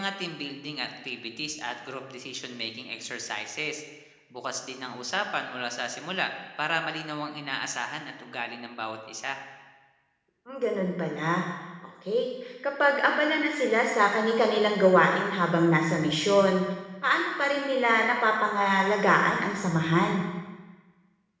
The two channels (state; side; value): identical; both; correlation 1.00